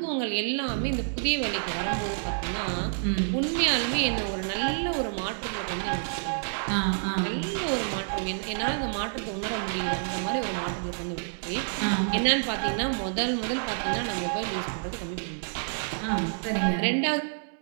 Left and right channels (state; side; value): silent; left; digital silence